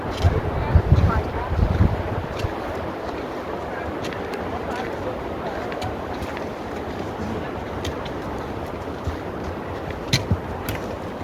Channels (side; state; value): both; identical; correlation 1.00